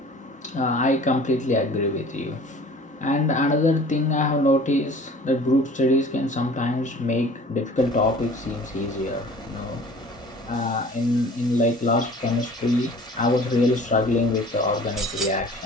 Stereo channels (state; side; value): normal; both; correlation 0.46